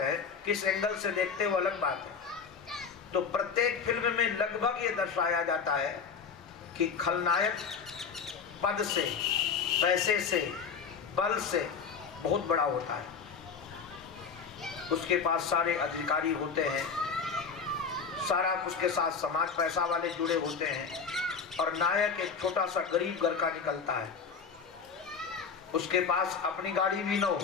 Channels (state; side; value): quieter; right; 5.9 dB